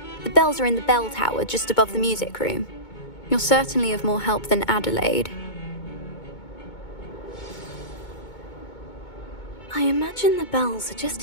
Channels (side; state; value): right; late; 2.2 ms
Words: The bells are in the bell tower just above the music room. You're certainly of more help than Adelaide. I imagine the bells are